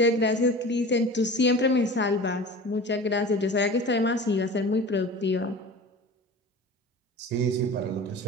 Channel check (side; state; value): both; normal; correlation 0.37